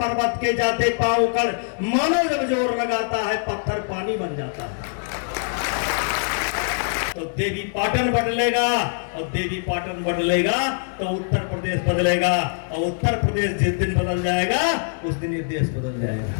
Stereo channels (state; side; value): silent; right; 62 dB below the other